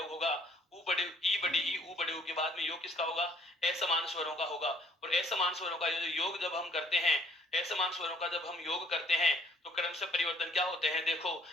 होगा। ऊ बड़े ई बड़ी ई ऊ बड़े ऊ के बाद में योग किसका होगा? असमान स्वरों का होगा। और असमान स्वरों का योग जब हम करते हैं, असमान स्वरों का जब हम योग करते हैं तो क्रम से परिवर्तन क्या होते हैं? देखो,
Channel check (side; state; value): both; normal; correlation 0.61